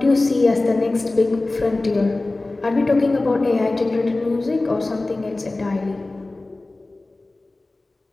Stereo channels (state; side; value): quieter; right; 3.0 dB